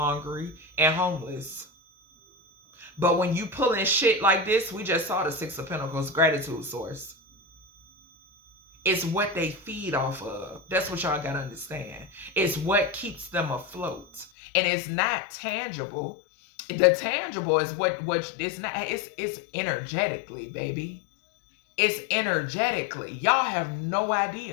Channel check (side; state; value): right; drops out; at 14.3 s